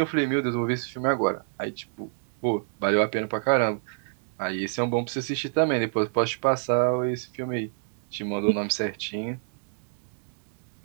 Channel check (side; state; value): left; silent; digital silence